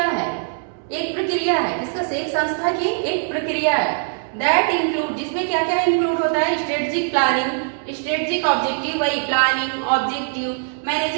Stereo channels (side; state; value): left; silent; digital silence